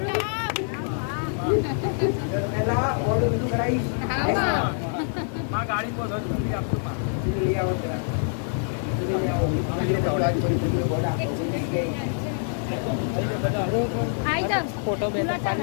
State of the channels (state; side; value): silent; right; 61 dB below the other